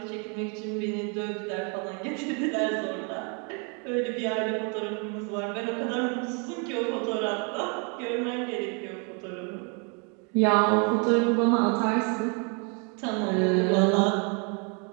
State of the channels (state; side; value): quieter; left; 35.1 dB